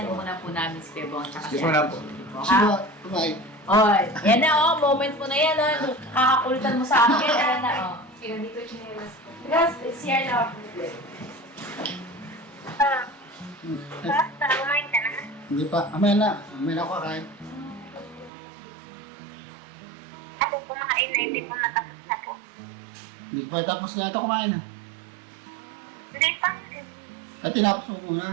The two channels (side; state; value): left; drops out; at 18.3 s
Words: muna po namin si Pebong. Excuse mo na po. Ha? Bye. Oy, yan na moment mo na yan. Kakakulitan mo sa akin. Yan na Kaya dito chinelas ko. Guys, CR na. Basta, kumain ka na. Hindi pa. Mamaya na. Mamaya na ako kakain. Ako kumain na, hindi po natapos na po. Hindi pa tapos na ito kumain ha. Hindi pa. At tinapos mo